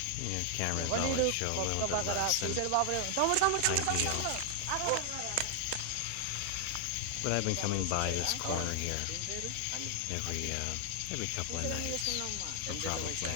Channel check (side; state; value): both; different; correlation 0.00